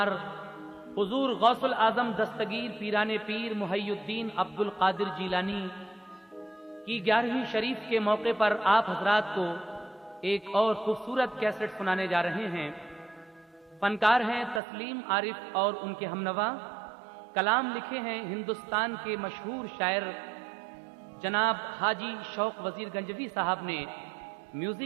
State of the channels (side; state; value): left; drops out; at 14.6 s